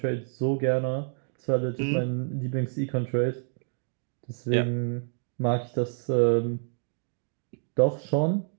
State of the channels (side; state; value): left; silent; digital silence